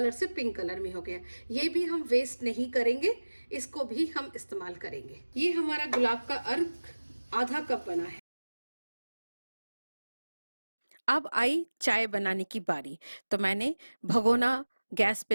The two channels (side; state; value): both; inverted; correlation -1.00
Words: से पिंक कलर में हो गया। ये भी हम वेस्ट नहीं करेंगे, इसको भी हम इस्तेमाल करेंगे। ये हमारा गुलाब का अर्क आधा कप बना है। अब आई चाय बनाने की बारी। तो मैंने भगोना गैस